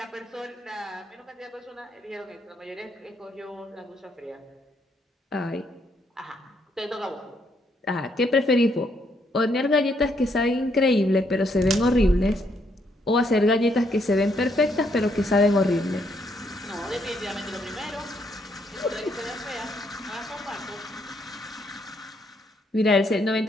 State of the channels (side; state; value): both; normal; correlation 0.73